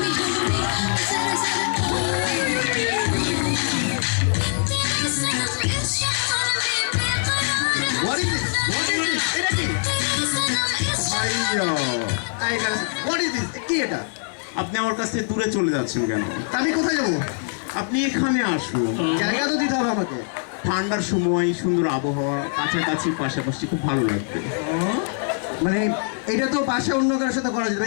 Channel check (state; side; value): silent; right; 58 dB below the other